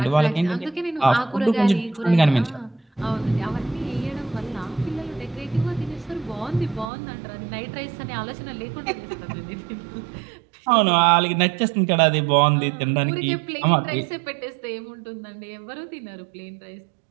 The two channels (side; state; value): left; drops out; at 6.9 s